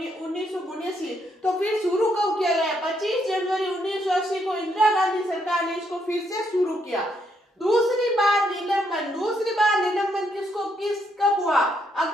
तो फिर शुरू कब किया गया? 25 जनवरी 1980 को इंदिरा गांधी सरकार ने इसको फिर से शुरू किया। दूसरी बार निलंबन किसको कब हुआ?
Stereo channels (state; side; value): normal; both; correlation 0.75